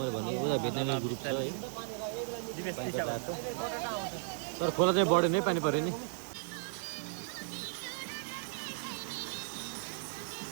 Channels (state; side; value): silent; left; digital silence